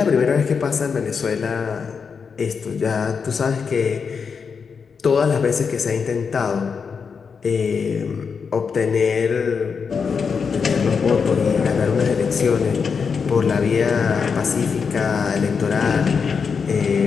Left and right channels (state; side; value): quieter; right; 5.8 dB